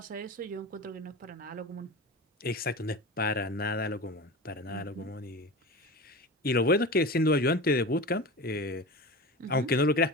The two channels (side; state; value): both; normal; correlation 0.29